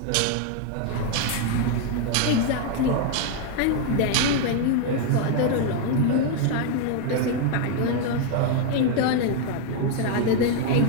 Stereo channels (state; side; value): different; both; correlation 0.00